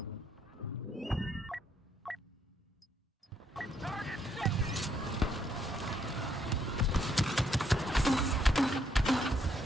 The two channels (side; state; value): both; normal; correlation 0.72